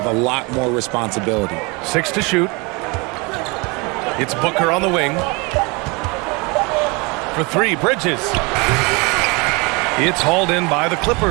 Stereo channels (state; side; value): quieter; left; 28.1 dB